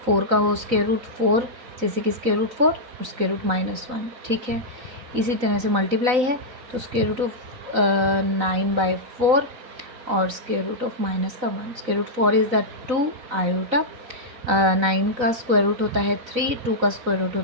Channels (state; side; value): late; left; 4.0 ms